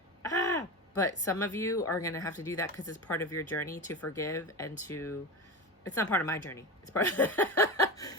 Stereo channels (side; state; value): both; normal; correlation 0.23